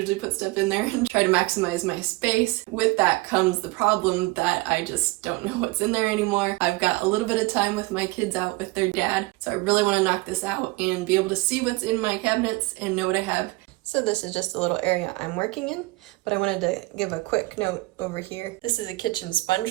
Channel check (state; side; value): quieter; left; 22.5 dB